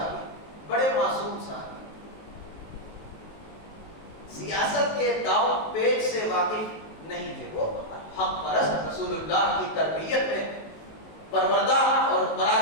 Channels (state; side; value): late; right; 19 ms